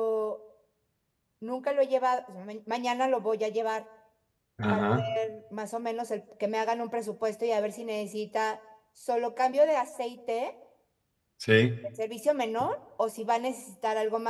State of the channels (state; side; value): identical; both; correlation 1.00